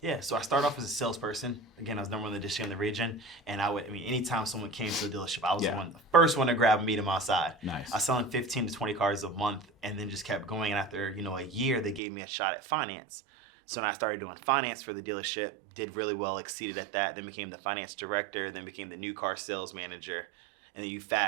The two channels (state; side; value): drops out; left; at 12.0 s